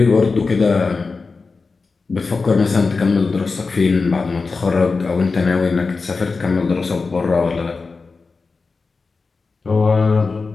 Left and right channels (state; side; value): quieter; right; 4.3 dB